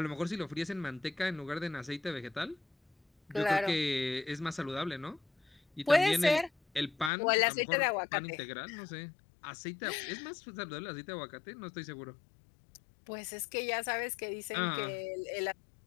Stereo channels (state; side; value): drops out; right; at 7.1 s